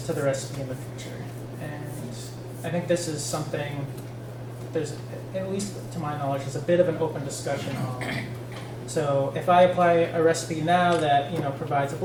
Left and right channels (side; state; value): both; identical; correlation 1.00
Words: to the recipe in the future? And I think this is something there's, at least to my knowledge, is a bit of an open discussion on. So if I apply a recipe now that provides a